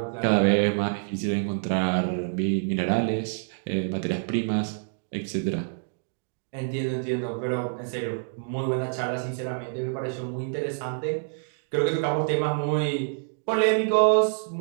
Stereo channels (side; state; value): left; silent; digital silence